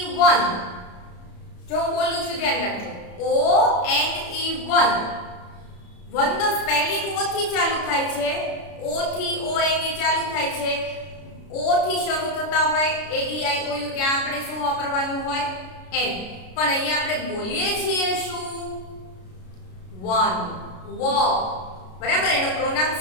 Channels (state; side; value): late; right; 33 ms